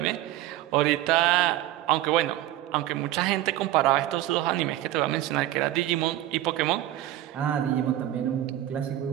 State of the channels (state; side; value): quieter; left; 14.3 dB